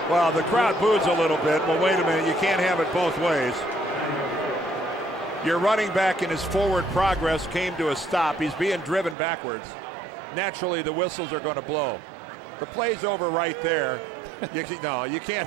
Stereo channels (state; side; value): drops out; left; at 9.2 s